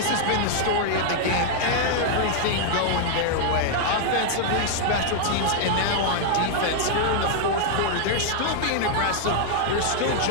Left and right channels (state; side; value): different; both; correlation -0.01